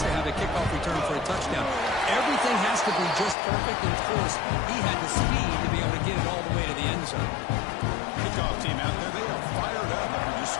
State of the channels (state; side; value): drops out; right; at 3.4 s